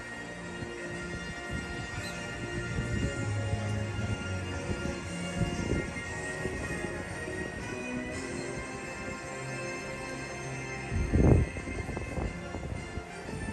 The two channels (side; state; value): both; identical; correlation 1.00